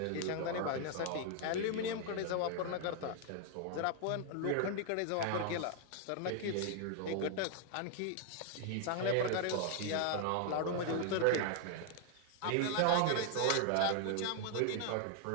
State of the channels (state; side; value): different; both; correlation 0.00